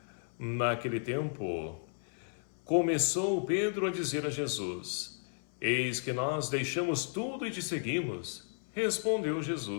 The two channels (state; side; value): silent; right; 55 dB below the other